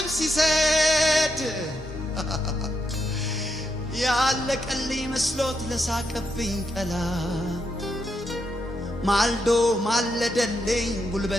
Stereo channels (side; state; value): both; normal; correlation 0.81